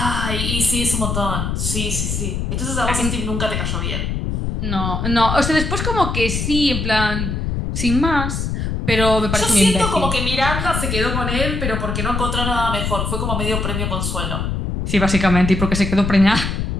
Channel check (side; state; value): left; noise; rumble, 2 dB below the sound